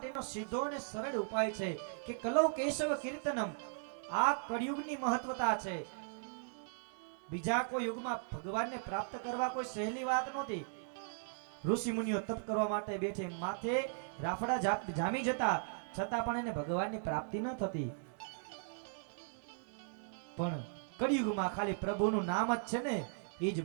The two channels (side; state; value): left; silent; digital silence